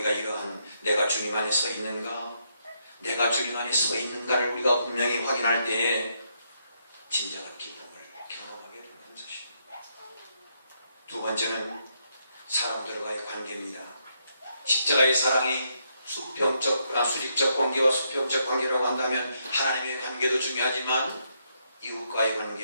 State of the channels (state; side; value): inverted; both; correlation -0.77